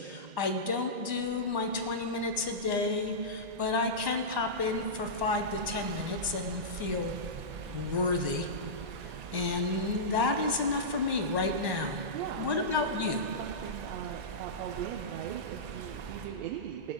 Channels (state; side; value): late; left; 1.1 ms